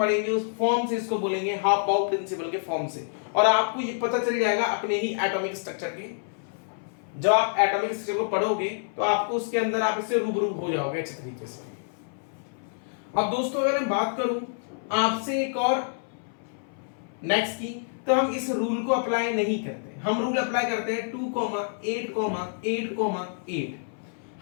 उस फॉर्म से, इसको बोलेंगे हाफ बाउ प्रिंसिपल के फॉर्म से, और आपको ये पता चल जाएगा अपने ही एटॉमिक स्ट्रक्चर के। जब आप एटॉमिक स्ट्रक्चर को पढ़ोगे तो आपको उसके अंदर आप इससे रूबरू हो जाओगे अच्छे तरीके से। अब दोस्तों अगर मैं बात करूं आपसे एक और नेक्स्ट की, तो हम इस रूल को अप्लाई नहीं करते, हम रूल अप्लाई करते हैं 2,8,8,8।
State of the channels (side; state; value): right; silent; 60 dB below the other